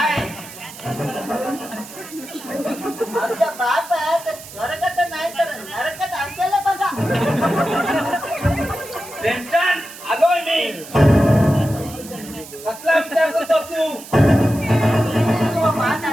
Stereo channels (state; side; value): noise; right; hiss, 16 dB below the sound